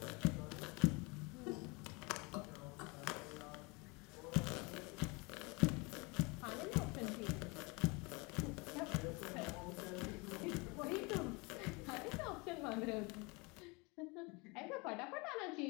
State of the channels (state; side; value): quieter; right; 27.9 dB